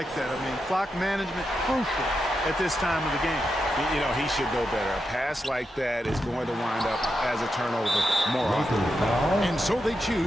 that. I mean, clock management, crucial at this time of the game. You know, he should know better. A pass like that is going to wind up as a turnover more often. And so they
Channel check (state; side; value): normal; both; correlation 0.87